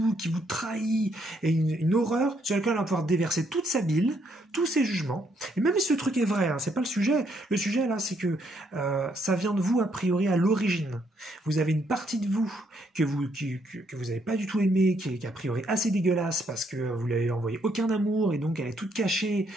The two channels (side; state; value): both; normal; correlation 0.72